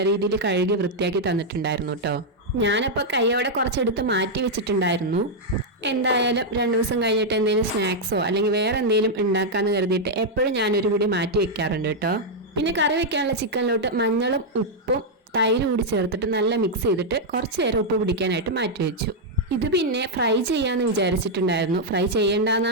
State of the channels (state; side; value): normal; both; correlation -0.03